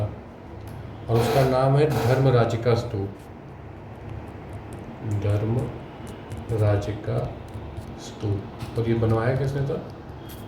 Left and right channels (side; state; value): both; identical; correlation 1.00